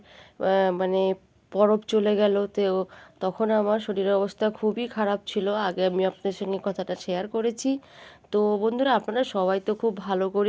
মানে পরব চলে গেল। তো তখন আমার শরীরের অবস্থা খুবই খারাপ ছিল। আগে আমি আপনাদের সঙ্গে কথাটা শেয়ার করেছি। তো বন্ধুরা, আপনারা সবাই তো খুব ভালো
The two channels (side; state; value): both; identical; correlation 1.00